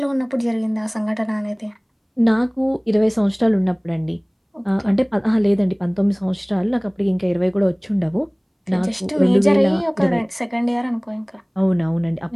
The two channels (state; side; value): identical; both; correlation 1.00